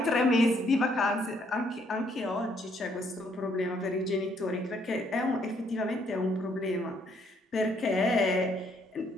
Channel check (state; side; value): normal; both; correlation 0.69